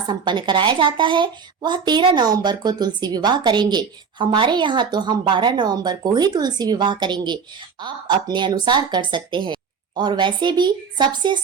संपन्न कराया जाता है वह 13 नवंबर को तुलसी विवाह करेंगे। हमारे यहाँ तो हम 12 नवंबर को ही तुलसी विवाह करेंगे। आप अपने अनुसार कर सकते हैं और वैसे भी सबसे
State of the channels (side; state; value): left; quieter; 6.0 dB